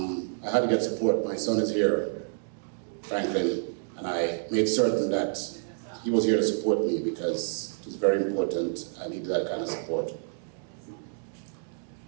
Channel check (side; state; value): left; silent; digital silence